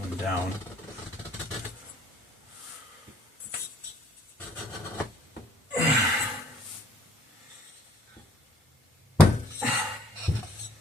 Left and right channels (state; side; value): normal; both; correlation 0.59